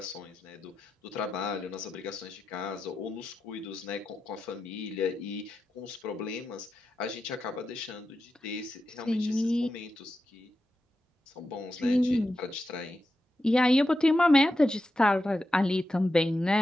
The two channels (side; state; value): both; normal; correlation 0.89